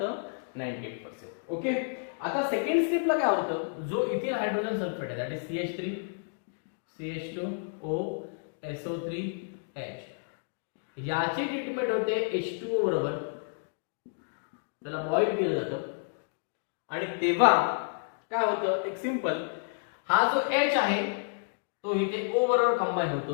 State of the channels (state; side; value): silent; right; digital silence